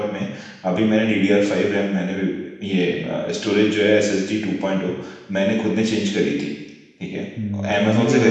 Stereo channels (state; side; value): identical; both; correlation 1.00